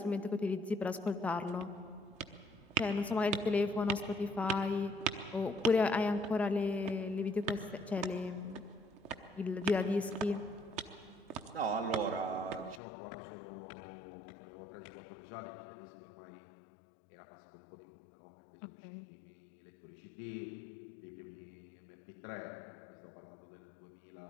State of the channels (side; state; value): right; drops out; at 12.8 s